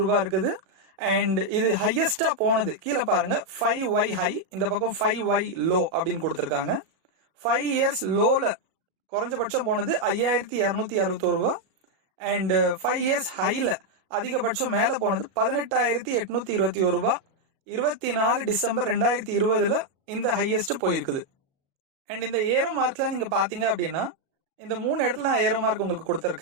ரூபாய் இருக்குது. அண்ட் இது ஹையஸ்டா போனது கீழே பாருங்க 5Y ஹை, இந்த பக்கம் 5Y லோ அப்படின்னு கொடுத்திருக்காங்க. 5 இயர்ஸ் லோல குறைஞ்சபட்சம் போனது 5,261 ரூபாய். அண்ட் 5 இயர்ஸ் ஹைல அதிகபட்சம் மேல போனது 18,821 ரூபாய். 24 டிசம்பர் 2020 இந்த ஹையஸ்ட் போயிருக்குது. அண்ட் இந்த ஏரோ மார்க்ல நீங்க பாத்தீங்க அப்படின்னா இந்த 3 இடத்துல நான் ஏரோ மார்க் உங்களுக்கு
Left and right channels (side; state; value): left; late; 36 ms